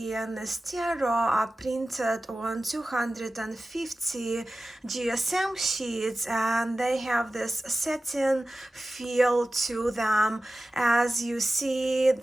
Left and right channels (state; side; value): normal; both; correlation 0.95